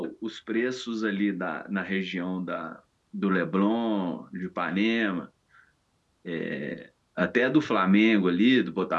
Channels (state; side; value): identical; both; correlation 1.00